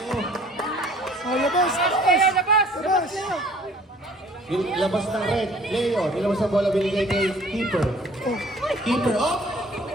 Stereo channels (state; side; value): normal; both; correlation 0.53